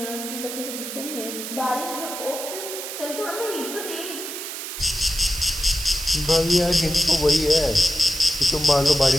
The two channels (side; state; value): right; noise; hiss, 7 dB below the sound